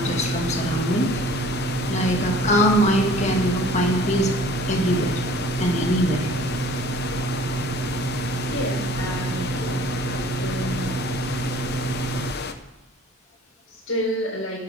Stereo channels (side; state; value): both; normal; correlation 0.50